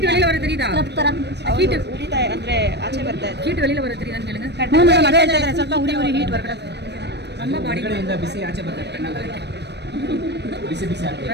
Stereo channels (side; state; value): left; late; 0.50 ms